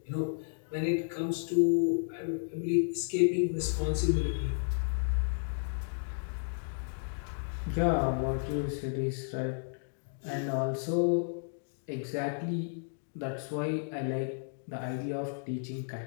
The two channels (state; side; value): silent; right; digital silence